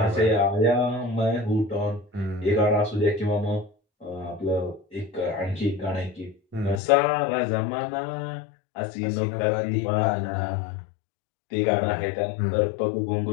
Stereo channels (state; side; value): drops out; right; at 6.8 s